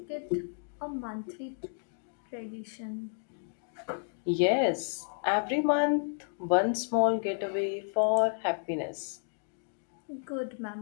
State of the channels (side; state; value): right; silent; digital silence